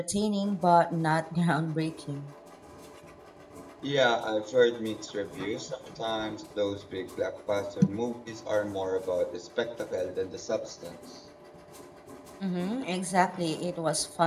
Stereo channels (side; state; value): both; identical; correlation 1.00